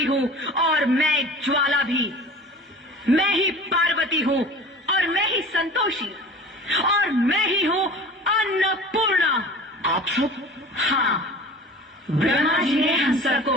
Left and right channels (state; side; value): normal; both; correlation 0.40